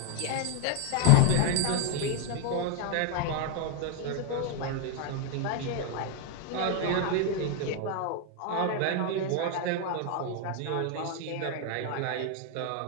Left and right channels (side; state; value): both; different; correlation 0.00